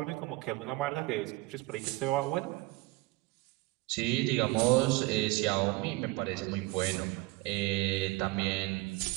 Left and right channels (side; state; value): left; quieter; 22.0 dB